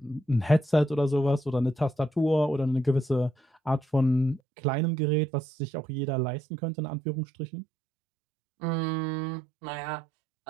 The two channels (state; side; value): drops out; left; at 4.4 s